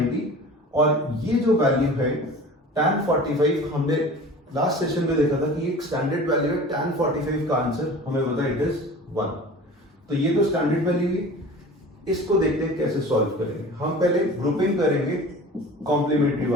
और ये जो वैल्यू है tan 45, हमने लास्ट सेशन में देखा था कि एक स्टैंडर्ड वैल्यू है. tan 45 का आंसर हमें पता है इट इज 1. तो ये तो स्टैंडर्ड वैल्यू है. इसको देखते हैं कैसे सॉल्व करेंगे. हम पहले ग्रुपिंग करेंगे कॉम्प्लीमेंट्री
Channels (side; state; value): both; normal; correlation 0.40